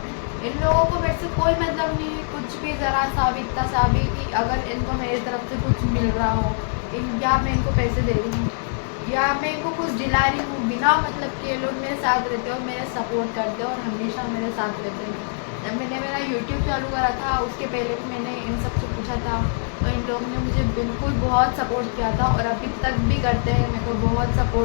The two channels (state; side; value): silent; right; 63 dB below the other